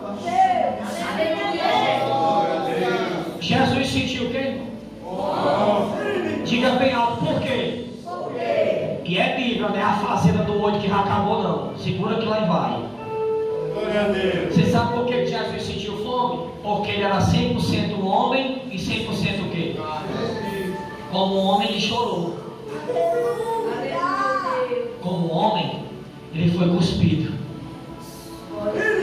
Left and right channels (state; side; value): identical; both; correlation 1.00